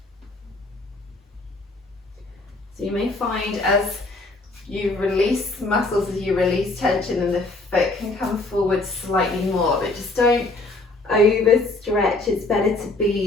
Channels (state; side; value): quieter; right; 3.1 dB